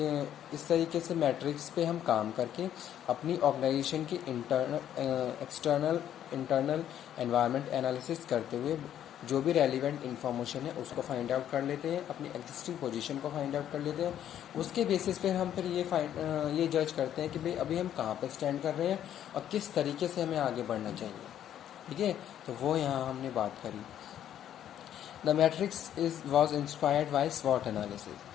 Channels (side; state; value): right; quieter; 10.6 dB